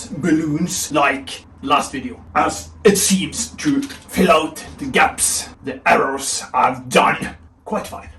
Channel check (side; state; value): both; identical; correlation 1.00